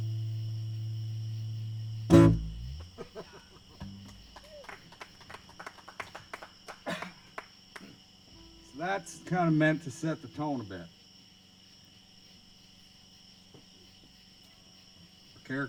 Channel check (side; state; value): both; identical; correlation 1.00